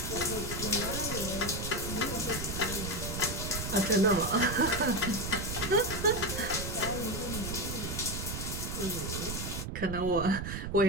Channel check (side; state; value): right; noise; rumble, 5 dB below the sound